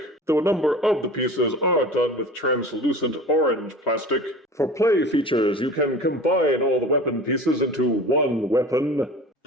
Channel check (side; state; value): both; normal; correlation 0.38